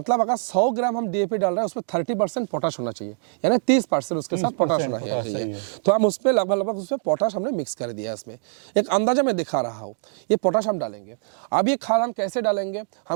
अगर 100 ग्राम हम DAP डाल रहे हैं उसमें 30% पोटाश होना चाहिए, यानी 30% उसके साथ पोटाश होना चाहिए। तो हम उसमें लगभग उसमें पोटाश हमने मिक्स कर दिया। इसमें एक अंदाजा मैं दिखा रहा हूँ, ये पोटाश हम डालेंगे। अब ये खाद हम कैसे डालेंगे,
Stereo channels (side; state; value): left; silent; digital silence